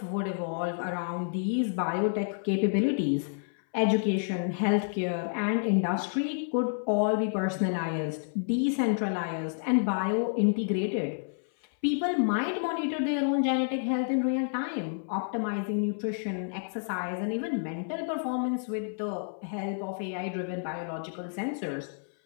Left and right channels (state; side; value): silent; right; 58 dB below the other